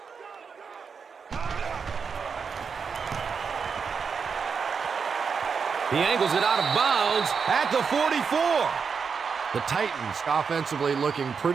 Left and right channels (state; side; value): quieter; left; 5.9 dB